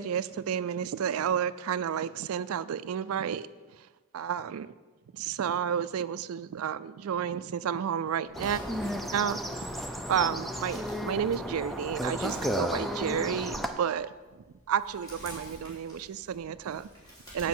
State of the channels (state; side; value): quieter; left; 5.9 dB